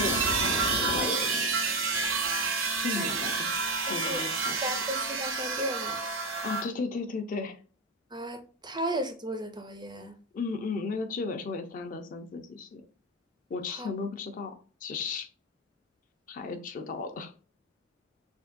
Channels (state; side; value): normal; both; correlation 0.13